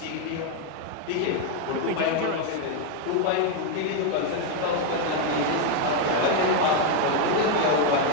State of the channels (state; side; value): different; both; correlation 0.01